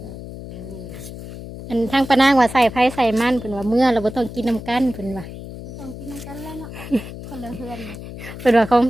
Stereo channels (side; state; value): left; noise; hum, 12 dB below the sound